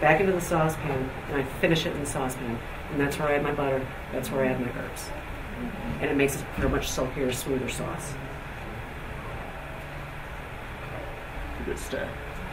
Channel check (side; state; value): both; identical; correlation 1.00